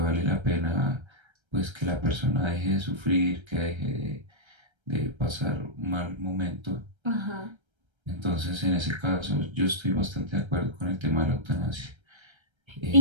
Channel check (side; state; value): left; late; 1.3 ms